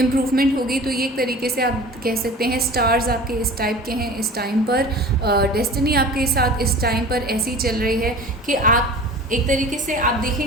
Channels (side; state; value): both; normal; correlation 0.39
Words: होगी। तो ये एक तरीके से आप कह सकते हैं स्टार्स आपके इस टाइप के हैं इस टाइम पर। डेस्टिनी आपके साथ इस टाइम पर ऐसी चल रही है कि आप एक तरीके से आप